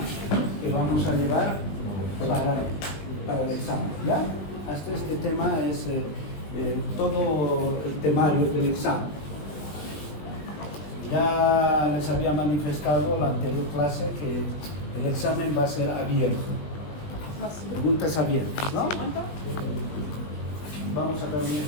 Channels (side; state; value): right; late; 20 ms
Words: que vamos a llevar para el examen, ¿ya? Hasta este tema es todo el temario del examen. Ya les había manifestado en la anterior clase que el examen va a ser abierto. Preguntas abiertas, ¿no? Vamos a dar un